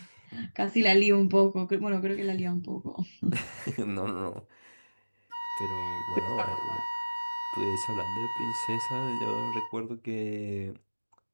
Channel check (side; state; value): both; inverted; correlation -1.00